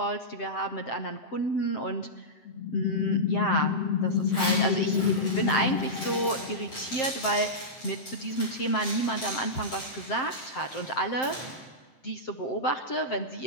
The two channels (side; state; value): right; late; 7.7 ms